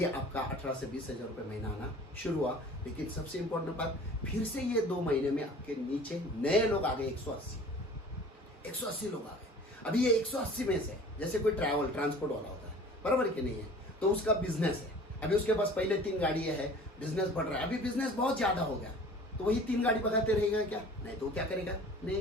आपका 18 से 20 हजार रुपये महीना आना शुरू हुआ। लेकिन सबसे इंपॉर्टेंट बात, फिर से ये 2 महीने में आपके नीचे नए लोग आ गए 180 लोग आ गए। अभी ये 180 में से जैसे कोई ट्रांसपोर्ट वाला होता है, बराबर कि नहीं है, तो उसका बिजनेस है, अभी उसके पास पहले 3 गाड़ियां है, बिजनेस बढ़ रहा है, अभी बिजनेस बहुत ज्यादा हो गया, तो वही 3 गाड़ी भगाते रहेगा क्या? नहीं, तो क्या करेगा, नई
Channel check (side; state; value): both; normal; correlation 0.45